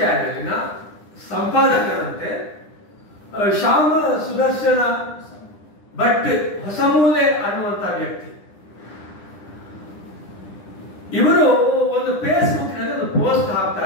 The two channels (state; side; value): late; right; 9.9 ms